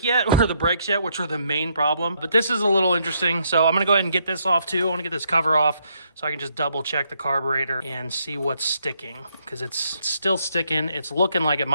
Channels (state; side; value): inverted; both; correlation -0.74